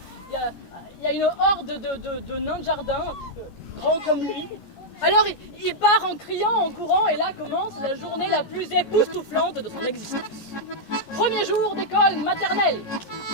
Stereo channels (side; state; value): right; late; 15 ms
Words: il y a une horde de nains de jardin, grands comme lui. Alors il part en criant, en courant, et là commence la journée la plus époustouflante de son existence. Premier jour d'école maternelle.